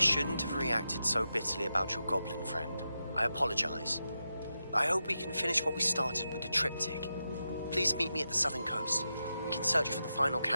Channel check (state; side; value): inverted; both; correlation -0.88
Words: shouldn't have reacted so bitterly about your goblin friend. I apologize. I hope we can finish what we started with the triptych. Please meet me at the southern coast. We can search for the final